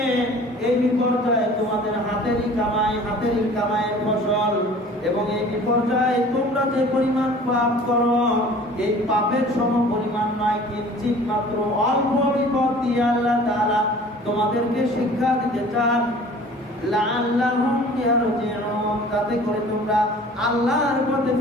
এই বিপর্যয় তোমাদের হাতেরই কামাই, হাতেরই কামাইয়ের ফসল, এবং এই পর্যায়ে তোমরা যে পরিমাণ পাপ করো এই পাপের সম পরিমাণ নয়, কিঞ্চিত মাত্র অল্প বিপদ দিয়ে আল্লাহ তাআলা তোমাদেরকে শিক্ষা দিতে চান। লাআল্লাহুম ইয়ারজিউন, যাতে করে তোমরা আল্লাহর পথে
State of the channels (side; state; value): both; normal; correlation 0.47